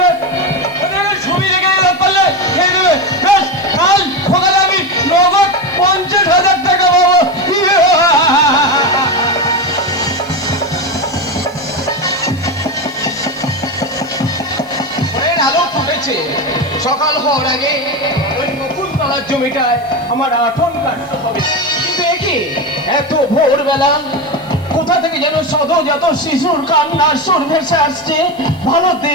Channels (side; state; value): left; noise; hiss, 29 dB below the sound